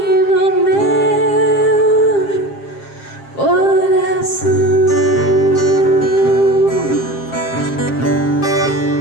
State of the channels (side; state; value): right; late; 7.5 ms